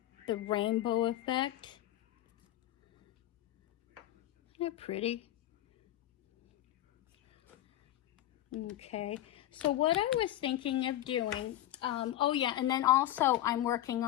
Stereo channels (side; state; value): right; quieter; 13.6 dB